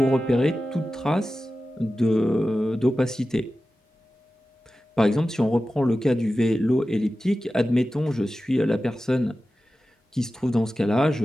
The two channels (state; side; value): normal; both; correlation 0.94